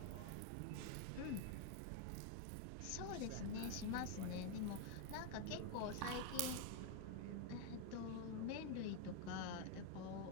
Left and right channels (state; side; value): different; both; correlation 0.01